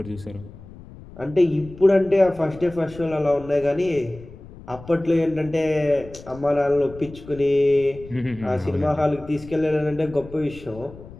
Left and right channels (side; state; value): left; noise; rumble, 18 dB below the sound